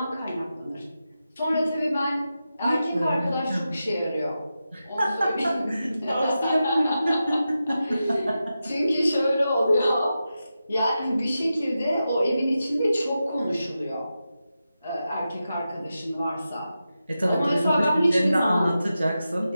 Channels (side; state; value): both; inverted; correlation -0.91